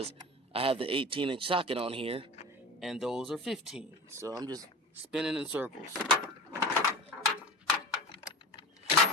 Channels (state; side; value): normal; both; correlation 0.33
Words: I have the 18-inch socket on here, and those are 15. So I'm just spinning in circles.